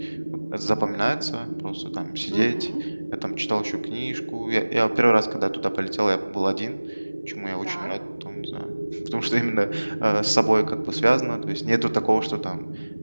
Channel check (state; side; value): inverted; both; correlation -1.00